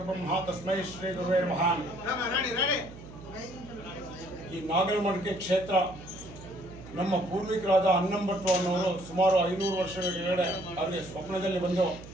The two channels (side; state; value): right; noise; hum, 16 dB below the sound